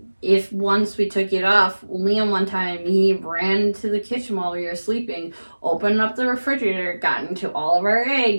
if once we took it off, Liam one time, he ran into the kitchen while we were sleeping, opened up the refrigerator, got into all of our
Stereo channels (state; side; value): inverted; both; correlation -1.00